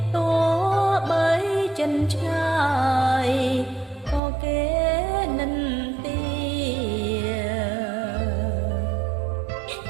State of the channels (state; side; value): drops out; left; at 4.2 s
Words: ទោះបីចិនឆ្ងាយក៏គេនិន្ទា